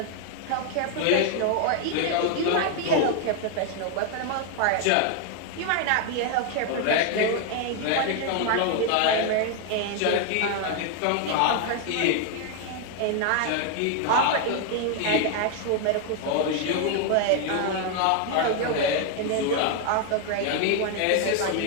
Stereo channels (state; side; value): different; both; correlation 0.01